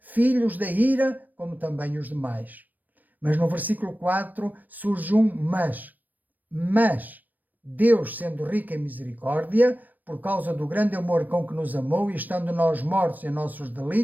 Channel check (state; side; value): late; left; 0.086 ms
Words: da ira, como também os demais. Mas no versículo 4 surge um mas. Mas Deus, sendo rico em misericórdia, por causa do grande amor com que nos amou, e estando nós mortos em nossos